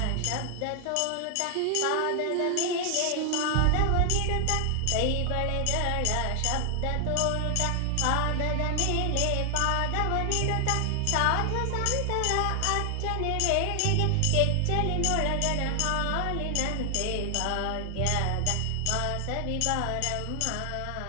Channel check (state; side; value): different; both; correlation 0.00